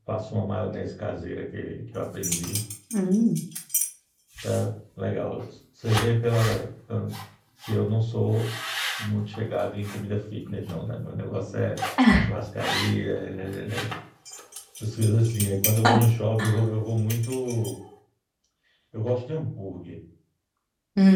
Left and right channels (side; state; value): both; identical; correlation 1.00